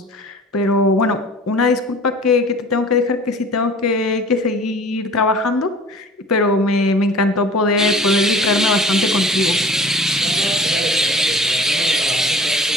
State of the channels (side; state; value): both; normal; correlation 0.45